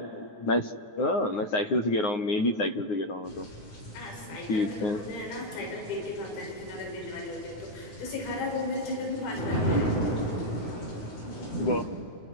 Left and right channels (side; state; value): right; late; 9.6 ms